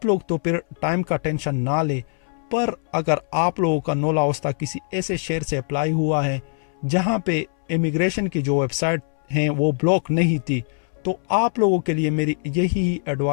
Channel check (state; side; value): silent; right; 64 dB below the other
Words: लोग तो फिर टाइम का टेंशन ना ले। पर अगर आप लोगों का नोला उस्ता किसी ऐसे शहर से अप्लाई हुआ है जहाँ पे इमिग्रेशन की जो वेबसाइट हैं वो ब्लॉक नहीं थी, तो आप लोगों के लिए मेरी यही